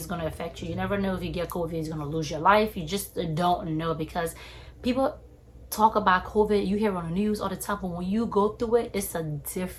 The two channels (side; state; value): both; identical; correlation 1.00